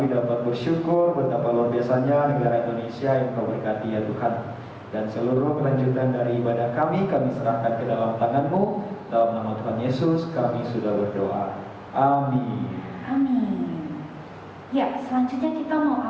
dapat bersyukur betapa luar biasanya negara Indonesia yang Kau berkati ya Tuhan. Dan seluruh kelanjutan dari ibadah kami serahkan ke dalam tangan-Mu. Dalam nama Tuhan Yesus kami sudah berdoa. Amin. Amin. Ya, selanjutnya kita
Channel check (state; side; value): identical; both; correlation 1.00